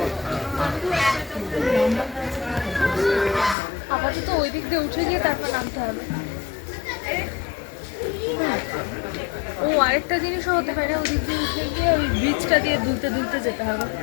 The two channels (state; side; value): drops out; right; at 3.6 s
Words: আপাতত ওই দিক দিয়ে উঠে গিয়ে তারপর নামতে হবে। ও আরেকটা জিনিসও হতে পারে, ওই দিক দিয়ে উঠে গিয়ে ওই ব্রিজটা দিয়ে দুলতে দুলতে যেতে হবে।